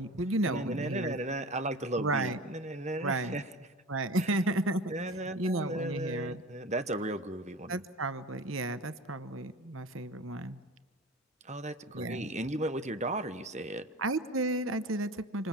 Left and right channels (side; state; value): both; normal; correlation 0.35